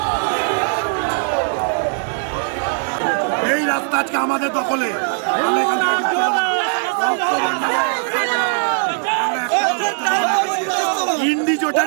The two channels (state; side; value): silent; left; 66 dB below the other